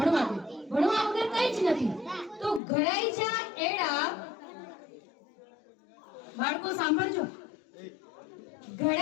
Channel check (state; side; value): drops out; right; at 2.6 s